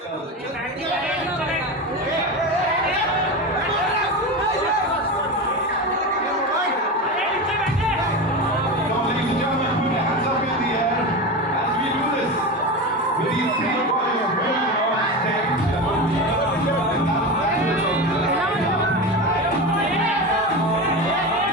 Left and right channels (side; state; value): both; normal; correlation 0.23